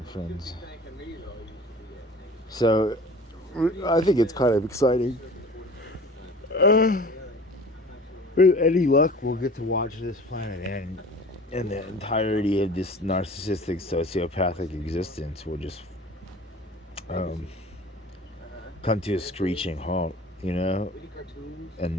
friends. So I think it's kind of exciting. With any luck, we'll get to watch this planet end, and the entirety of this narcissistic, sociopathic existence will just come to a screeching halt, you know. And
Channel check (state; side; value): normal; both; correlation 0.43